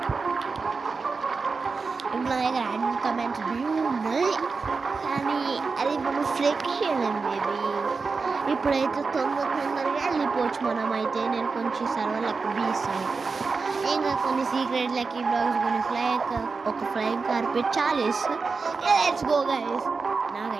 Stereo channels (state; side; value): quieter; left; 4.5 dB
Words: ఇప్పుడు నా దగ్గర యాడ్ కమెంట్స్ వ్యూ ఉన్నాయి. కానీ అది మనం ఫ్లెక్షన్ బేబీ. ఇప్పుడైతే తొందరగా వెళ్ళిపోవచ్చు మనం. అయితే నేను కొంచెం సర్వర్లకు బీస్తాను. ఇంకా కొన్ని సీక్రెట్ లక్కీ బ్లాగ్స్ కొన్ని ఒక flying carpet challenge. Let's go guys.